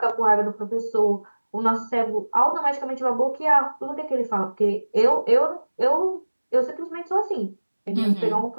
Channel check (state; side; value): inverted; both; correlation -1.00